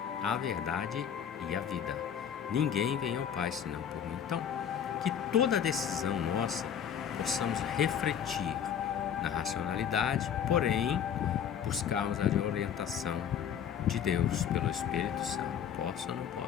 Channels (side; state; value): right; quieter; 8.5 dB